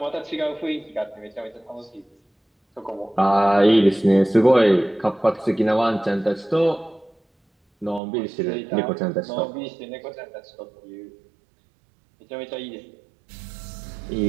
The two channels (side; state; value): left; drops out; at 8.0 s